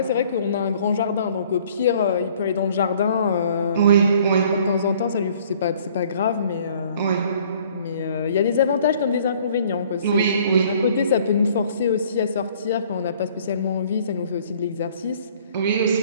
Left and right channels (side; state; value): both; inverted; correlation -0.56